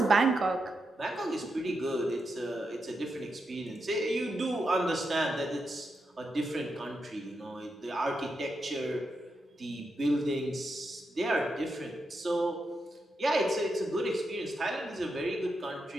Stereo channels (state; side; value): normal; both; correlation 0.85